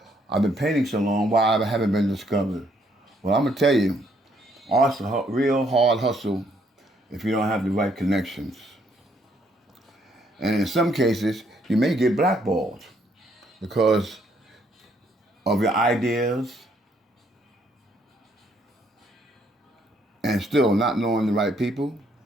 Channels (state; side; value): normal; both; correlation 0.69